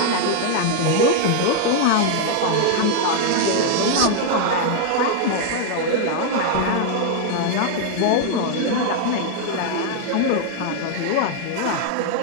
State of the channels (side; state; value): both; different; correlation 0.00